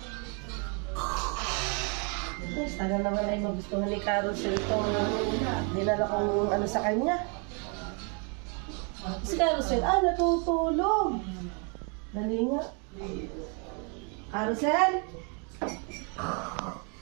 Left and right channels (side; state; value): left; quieter; 36.4 dB